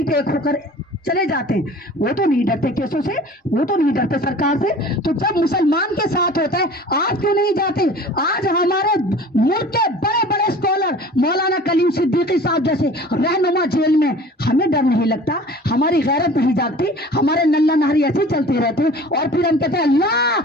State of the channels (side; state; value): both; normal; correlation 0.44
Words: एक होकर चले जाते हैं। वो तो नहीं डरते केसों से, वो तो नहीं डरते सरकार से। तो जब मुसलमान के साथ होता है, आज क्यों नहीं जाते। आज हमारे मुल्क के बड़े बड़े स्कॉलर मौलाना कलीम सिद्दीकी साहब जैसे रहनुमा जेल में, हमें डर नहीं लगता, हमारी गैरत नहीं जागती, हमारे नल्ला नहरी ऐसे चलते रहते हैं। और फिर हम कहते हैं